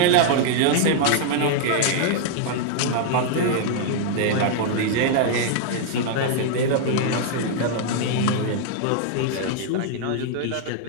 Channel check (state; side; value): different; both; correlation 0.00